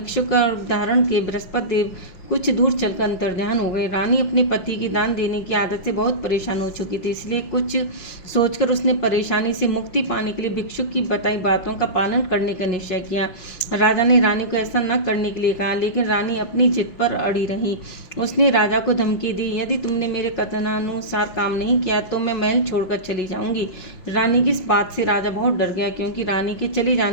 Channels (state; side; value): late; right; 5.8 ms